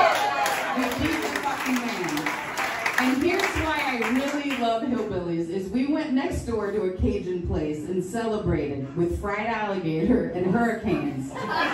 decent fucking man. And here's why I really love hillbillies, is we went next door to a Cajun place and celebrated with fried alligator and hurricanes.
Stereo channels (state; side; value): identical; both; correlation 1.00